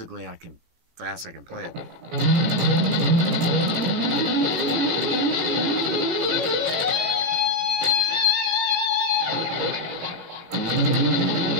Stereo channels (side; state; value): left; late; 18 ms